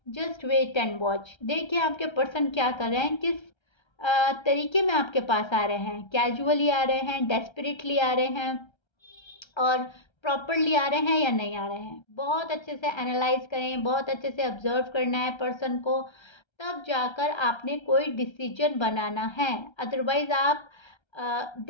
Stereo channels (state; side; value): late; right; 1.3 ms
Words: जस्ट वेट एंड वॉच, देखिए आपके पर्सन क्या कर रहे हैं, किस तरीके में आपके पास आ रहे हैं, कैजुअली आ रहे हैं, डेस्परेटली आ रहे हैं, और प्रॉपरली आ रहे हैं या नहीं आ रहे हैं। बहुत अच्छे से एनालाइज करें, बहुत अच्छे से ऑब्जर्व करना है पर्सन को, तब जाकर आपने कोई डिसीजन बनाना है। अदरवाइज आप